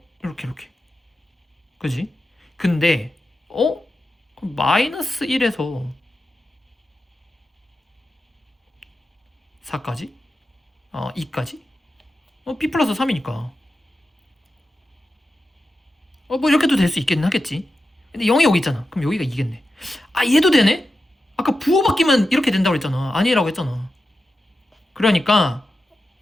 이렇게 그지? 근데 그럼 마이너스 1에서 4까지? 2까지? b 플러스 3이니까 뭐 이렇게도 될 수 있겠긴 하겠지. 근데 0이 여기 있잖아. 그럼 여기가 2겠네. 얘도 되네? 아까 부호 바뀌면 이렇게 된다고 그랬잖아. 아니라고 했잖아. 그러니까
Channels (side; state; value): both; normal; correlation 0.91